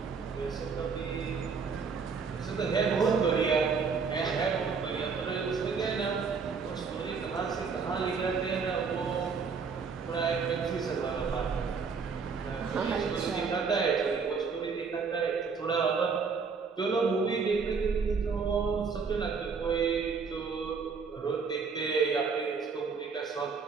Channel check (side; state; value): left; quieter; 5.3 dB